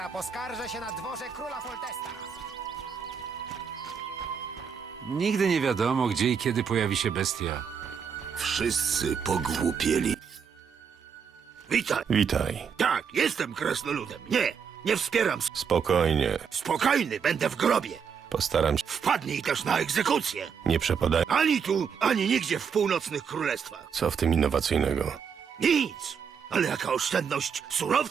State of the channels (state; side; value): quieter; left; 6.8 dB